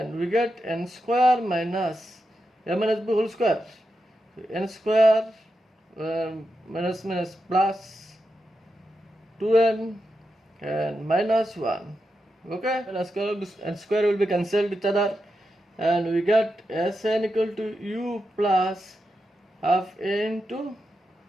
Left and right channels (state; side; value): normal; both; correlation 0.87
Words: we get n square minus a minus b whole square, n square minus minus plus 2n and minus 1, okay, and square will be cancelled each other, and we get Sn equal to u plus half a into